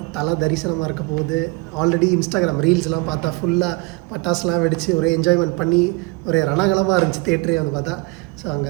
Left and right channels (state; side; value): quieter; left; 25.0 dB